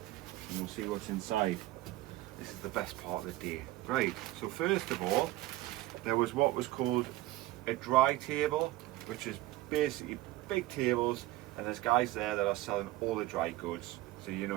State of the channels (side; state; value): left; quieter; 17.1 dB